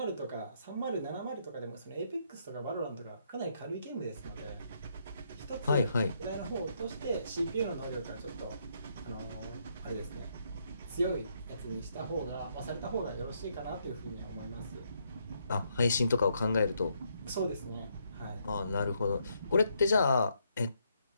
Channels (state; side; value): inverted; both; correlation -0.75